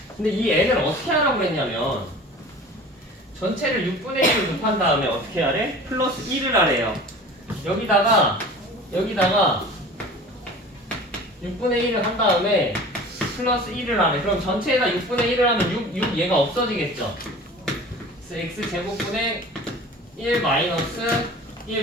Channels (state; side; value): normal; both; correlation 0.41